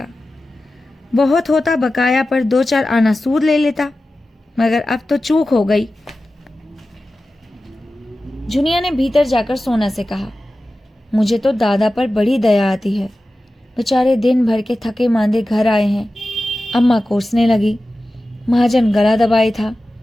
बहुत होता बकाया पर 2-4 आना सूद ले लेता, मगर अब तो चूक हो गई। जुनिया ने भीतर जाकर सोना से कहा, मुझे तो दादा पर बड़ी दया आती है। बेचारे दिन भर के थके मांदे घर आए हैं। अम्मा कोसने लगी, महाजन गला दबाए था।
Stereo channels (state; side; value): normal; both; correlation 0.94